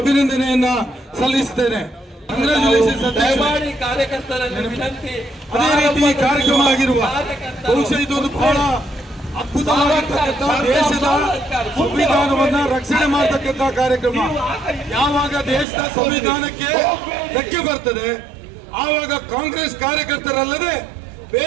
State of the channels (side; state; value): left; drops out; at 15.7 s